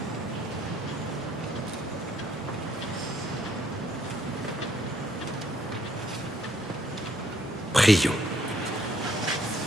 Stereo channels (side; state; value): both; normal; correlation 0.67